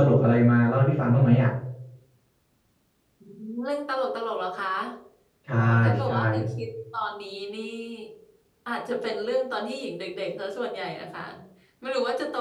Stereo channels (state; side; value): identical; both; correlation 1.00